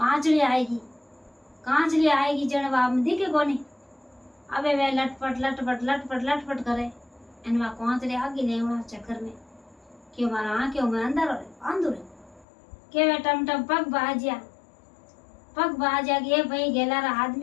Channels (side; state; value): right; drops out; at 12.5 s